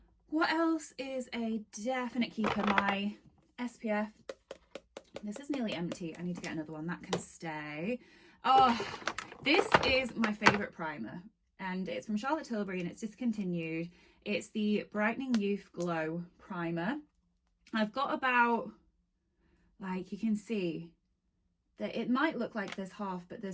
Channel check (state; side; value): identical; both; correlation 1.00